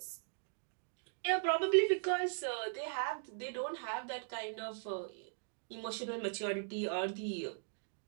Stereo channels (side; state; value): left; silent; digital silence